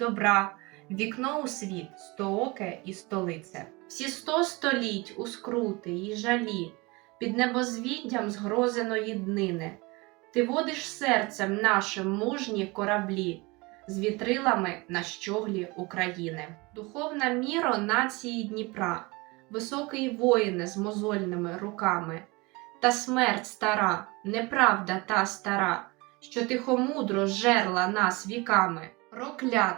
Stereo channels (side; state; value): left; quieter; 25.0 dB